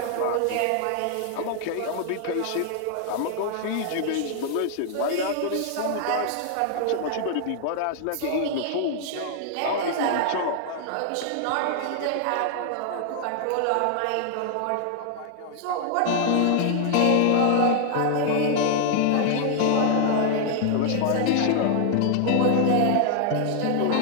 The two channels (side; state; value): both; different; correlation 0.00